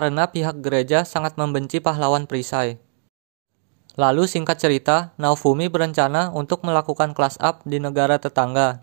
pihak gereja sangat membenci pahlawan perisai. Lalu singkat cerita, Naofumi berencana untuk melakukan class up di negara tetangga,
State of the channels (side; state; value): left; silent; digital silence